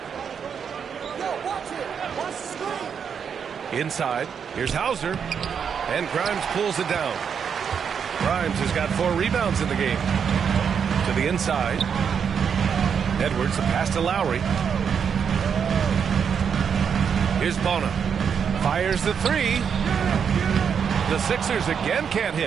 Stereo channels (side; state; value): left; quieter; 7.1 dB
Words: Inside. Here's Hauser. And Grimes pulls it down. Grimes has got 4 rebounds in the game. To the inside. Edwards, a pass to Lowry. Here's Bona. Fires the 3. The Sixers again can't